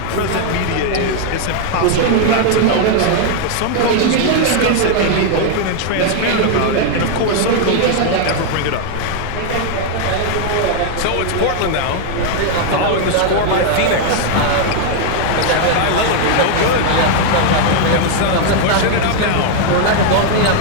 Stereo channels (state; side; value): different; both; correlation 0.00